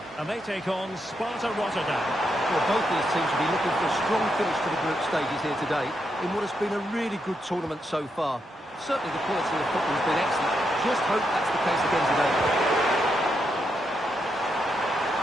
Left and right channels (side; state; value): both; normal; correlation 0.82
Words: and they take on Sparta Rotterdam. Well, both these teams will be looking for a strong finish to the group stages here today in what has been a really good tournament so far. Certainly the quality of football has been excellent. Just hope that's the case again today.